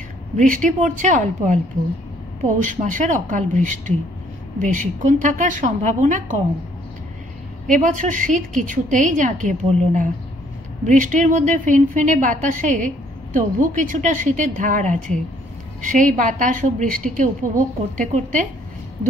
বৃষ্টি পড়ছে অল্প অল্প, পৌষ মাসের অকাল বৃষ্টি, বেশিক্ষণ থাকার সম্ভাবনা কম। এবছর শীত কিছুতেই জাঁকিয়ে পড়ল না। বৃষ্টির মধ্যে ফিনফিনে বাতাসে তবু কিছুটা শীতের ধার আছে। সেই বাতাস ও বৃষ্টিকে উপভোগ করতে করতে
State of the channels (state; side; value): normal; both; correlation 0.64